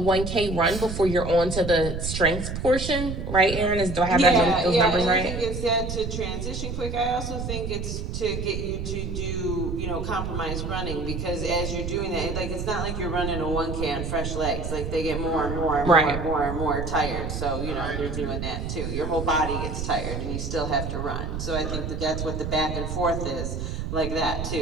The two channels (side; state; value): right; noise; rumble, 4 dB below the sound